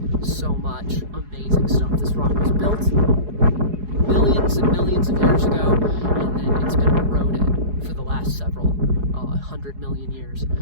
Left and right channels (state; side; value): late; left; 4.8 ms